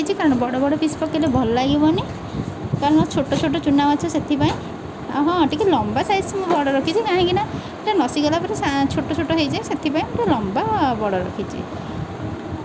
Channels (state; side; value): identical; both; correlation 1.00